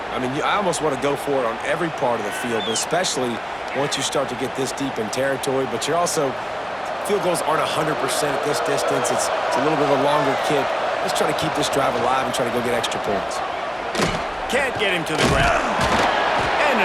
I mean, I almost want to go for it on every part of the field, but especially once you start to get this deep in territory. But you're also, field goals aren't 100% at this distance. It's a little bit of a longer kick. Let's try to keep this drive alive and try to go get extra points. Can't get him to the ground. And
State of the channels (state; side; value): identical; both; correlation 1.00